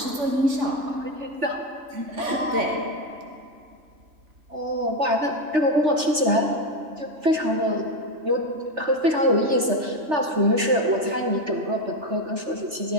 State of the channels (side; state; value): left; late; 3.3 ms